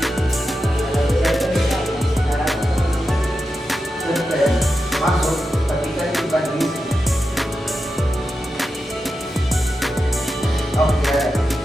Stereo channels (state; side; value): normal; both; correlation 0.90